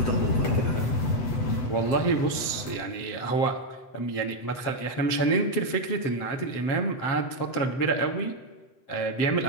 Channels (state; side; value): late; right; 7.5 ms